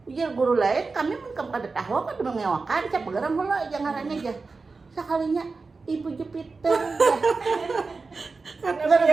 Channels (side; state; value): left; quieter; 4.2 dB